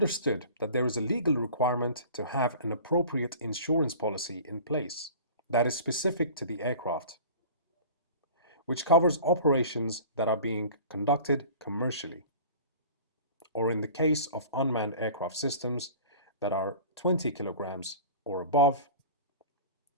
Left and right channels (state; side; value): inverted; both; correlation -0.41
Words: that there is a legal requirement to have an appropriate insurance policy in place that is specific to the aircraft, which covers operations that are being conducted commercially, or in the case of unmanned aircraft systems that are 20 kilograms or above,